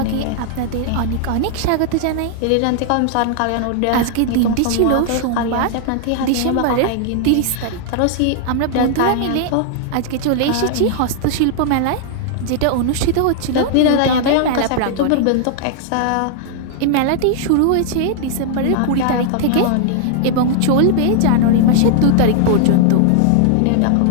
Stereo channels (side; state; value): both; different; correlation -0.01